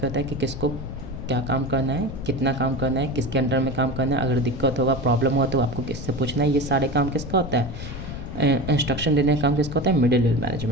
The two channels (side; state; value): left; noise; rumble, 9 dB below the sound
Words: है कि किसको क्या काम करना है, कितना काम करना है, किसके अंडर में काम करना है, अगर दिक्कत होगा, प्रॉब्लम हुआ तो आपको किससे पूछना है, ये सारे काम किसका होता है, इंस्ट्रक्शन देने का काम किसका होता है, मिडिल लेवल